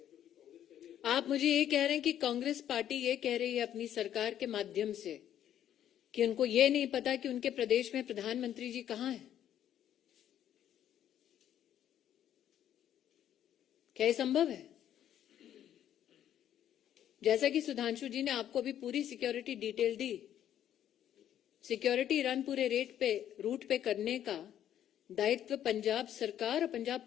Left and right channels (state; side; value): quieter; right; 10.7 dB